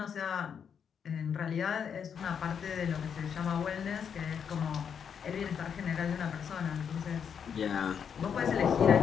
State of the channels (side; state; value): right; quieter; 7.4 dB